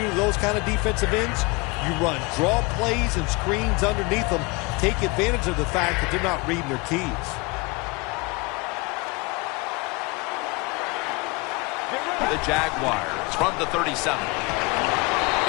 do to those kind of defensive ends? You run draw plays and screens underneath them. Take advantage of the fact that they're not reading their keys. The Jaguars from the 37.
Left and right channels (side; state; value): right; quieter; 26.6 dB